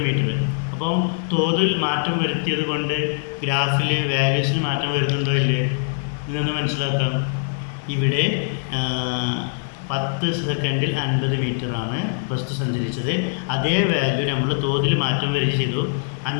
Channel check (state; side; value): silent; right; digital silence